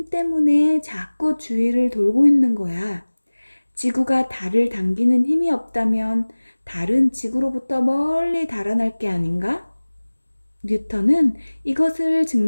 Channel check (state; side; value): inverted; both; correlation -1.00